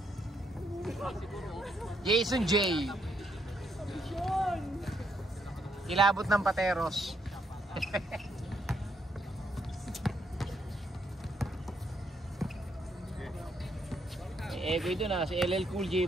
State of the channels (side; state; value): both; normal; correlation 0.75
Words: Jason J. Kilabot ng pateros. Ego ito na, si LL Cool J